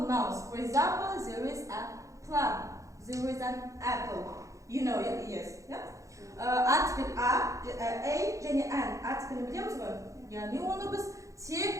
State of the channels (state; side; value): late; left; 0.15 ms